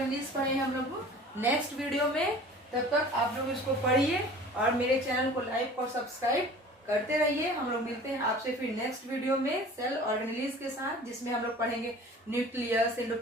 पढ़े हम लोग नेक्स्ट वीडियो में। तब तक आप लोग इसको पढ़िए और मेरे चैनल को लाइक और सब्सक्राइब करते रहिए। हम लोग मिलते हैं आपसे फिर नेक्स्ट वीडियो में सेल ऑर्गेनेलीज के साथ, जिसमें हम लोग पढ़ेंगे nucleus,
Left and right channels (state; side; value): normal; both; correlation 0.44